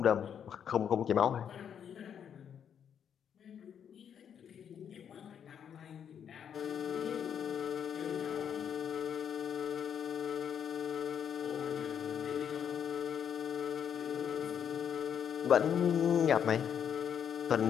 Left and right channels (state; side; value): quieter; right; 8.3 dB